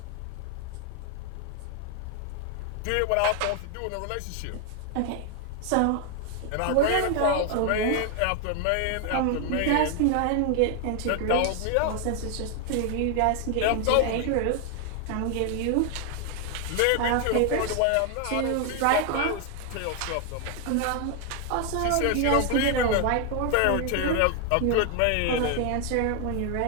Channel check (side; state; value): both; different; correlation 0.00